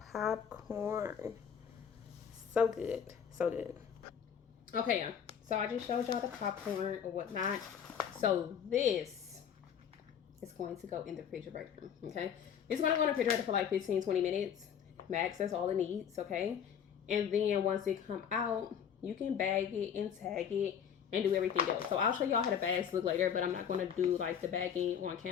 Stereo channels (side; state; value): right; quieter; 8.1 dB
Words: popcorn. So good. So good. Okay, y'all. So I just showed y'all the popcorn or whatnot. So this is going to go in the refrigerator. Okay. It's going to go in the refrigerator for like 15-20 minutes. Max, that's all it needs. Okay. And then once it come out, you can bag it and tag it and do everything else. So I'll show y'all how the bags look later, but I'm not going to do like the bagging on